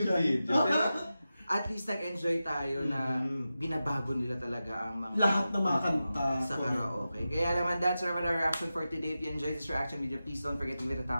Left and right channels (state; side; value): inverted; both; correlation -0.93